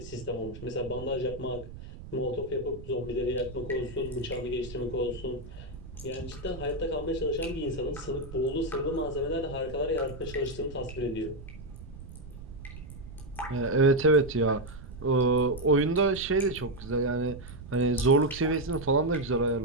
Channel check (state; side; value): noise; right; rumble, 14 dB below the sound